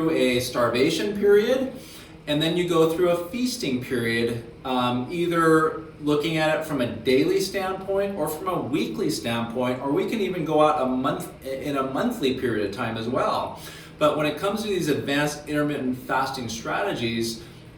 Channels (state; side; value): identical; both; correlation 1.00